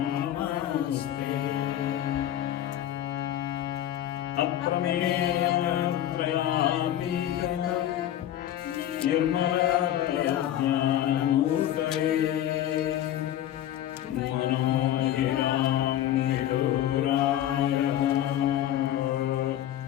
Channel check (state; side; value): quieter; right; 12.0 dB